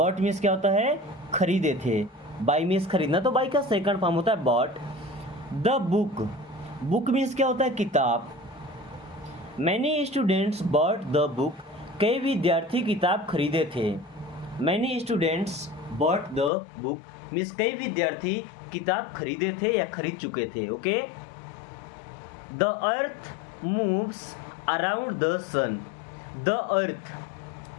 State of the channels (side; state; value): right; drops out; at 16.5 s